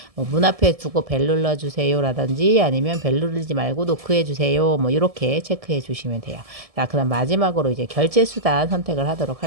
뭐 문 앞에 두고 벨 눌러주세요 라든지 아니면 벨 누르지 말고 노크해 주세요 뭐 이렇게 체크해 주시면 돼요. 자, 그다음 마지막으로 이제 결제 수단 선택을 하도록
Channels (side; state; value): left; late; 1.7 ms